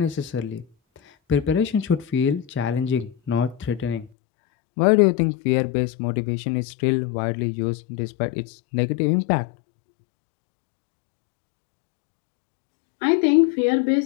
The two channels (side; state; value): right; drops out; at 4.1 s